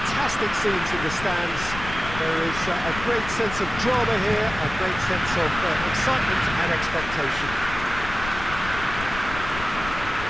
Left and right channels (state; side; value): noise; left; rumble, 10 dB below the sound